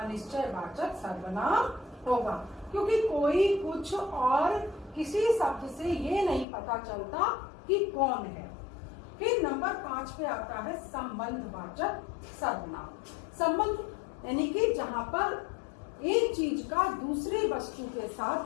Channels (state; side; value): drops out; right; at 6.5 s